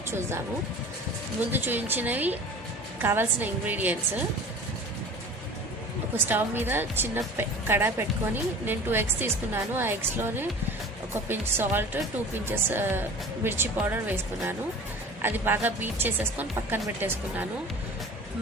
చూద్దాము. ముందు చూపించినవి కావాల్సిన ఇంగ్రీడియంట్స్. ఒక స్టవ్ మీద చిన్న కడాయి పెట్టుకొని నేను 2 eggs తీసుకున్నాను. ఆ ఎగ్స్లోనే ఒక పించ్ సాల్ట్, 2 pinches మిర్చి పౌడర్ వేసుకున్నాను. అది బాగా బీట్ చేసేసుకొని పక్కన పెట్టేసుకున్నాను.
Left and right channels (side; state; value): both; normal; correlation 0.40